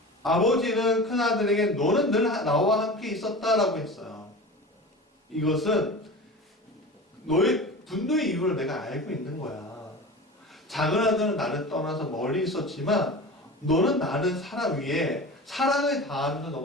아버지는 큰아들에게 너는 늘 나와 함께 있었다라고 했어요. 이것은 너의 분노의 이유를 내가 알고 있는 거야. 작은 아들은 나를 떠나서 멀리 있었지만 너는 나를 사랑 위에 사랑을 다하면서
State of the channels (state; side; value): normal; both; correlation 0.33